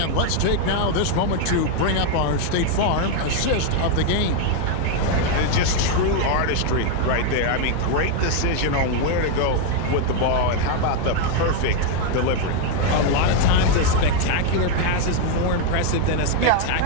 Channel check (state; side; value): different; both; correlation 0.01